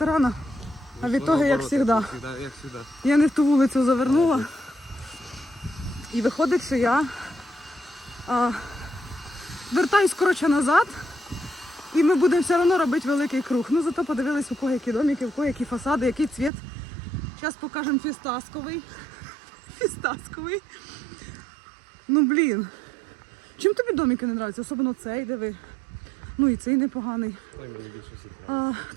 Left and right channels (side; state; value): left; drops out; at 16.5 s